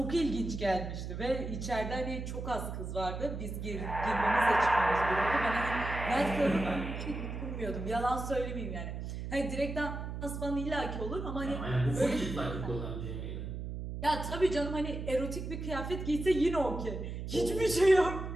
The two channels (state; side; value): noise; right; hum, 6 dB below the sound